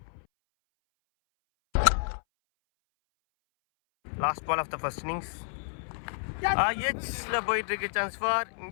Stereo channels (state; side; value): silent; right; 58 dB below the other